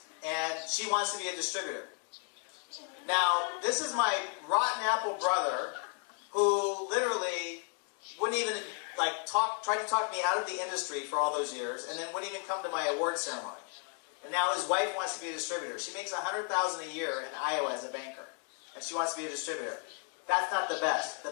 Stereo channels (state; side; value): quieter; right; 37.3 dB